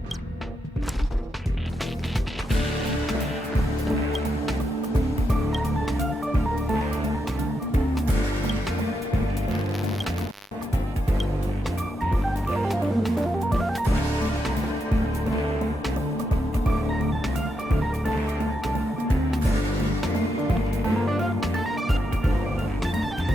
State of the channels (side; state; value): both; normal; correlation 0.83